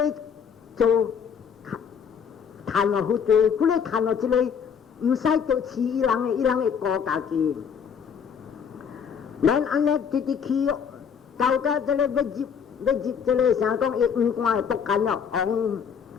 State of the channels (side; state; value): right; quieter; 7.0 dB